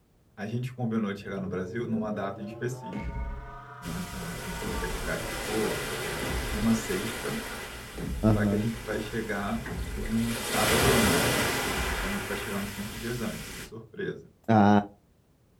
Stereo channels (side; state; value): both; identical; correlation 1.00